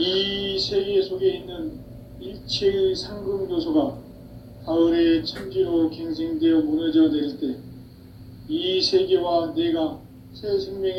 세계 속에 있는 일체의 상금 요소가 가을의 천지로 갱생되어 무너져 내릴 때 이 세계와 내가 새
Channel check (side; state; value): both; identical; correlation 1.00